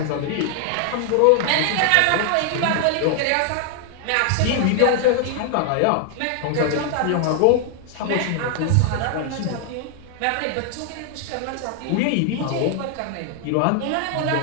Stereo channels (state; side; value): different; both; correlation 0.00